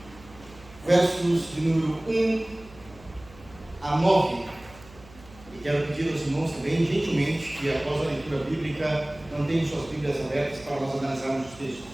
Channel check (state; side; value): noise; right; hum, 22 dB below the sound